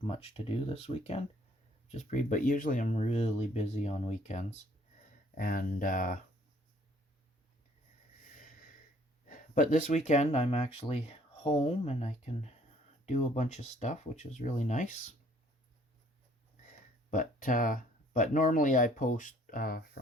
much to do this weekend. But usually I'm really busy on weekends. And but this weekend I'm actually home and I can do a bunch of stuff, which is really nice. But But normally I post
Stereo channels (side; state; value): both; normal; correlation 0.60